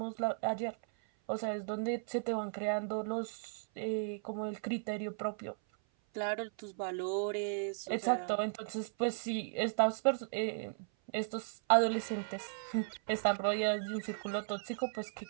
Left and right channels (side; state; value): left; silent; 54 dB below the other